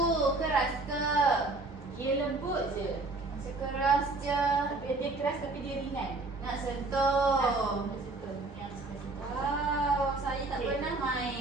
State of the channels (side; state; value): left; quieter; 3.3 dB